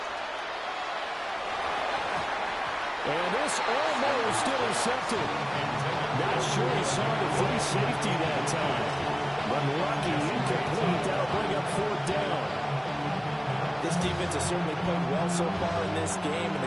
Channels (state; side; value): identical; both; correlation 1.00